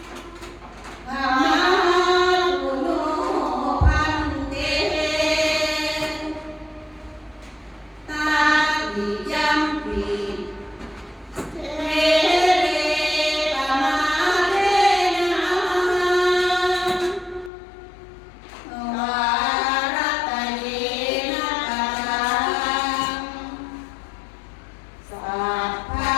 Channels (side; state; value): right; drops out; at 17.5 s